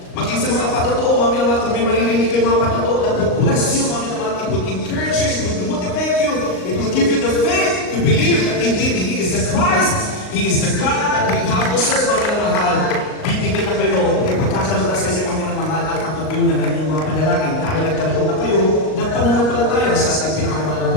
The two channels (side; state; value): right; late; 38 ms